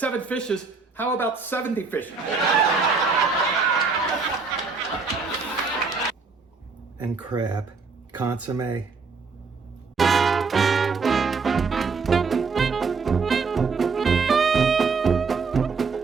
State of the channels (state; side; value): quieter; left; 4.8 dB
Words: fishes. How about 70 fish? And crab. Consomme.